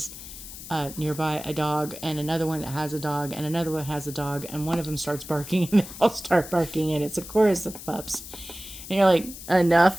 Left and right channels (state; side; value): noise; left; hiss, 13 dB below the sound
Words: nearby a dog, and another one that has a dog, and another one has a dog, and one of them starts barking, and they all start barking, and it's a chorus of pups. And you're like,